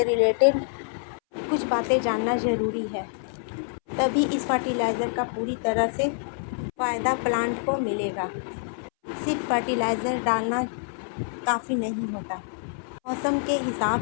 रिलेटेड कुछ बातें जानना ज़रूरी है, तभी इस फर्टिलाइज़र का पूरी तरह से फ़ायदा प्लांट को मिलेगा। सिर्फ फर्टिलाइज़र डालना काफ़ी नहीं होता, मौसम के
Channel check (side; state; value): right; silent; 61 dB below the other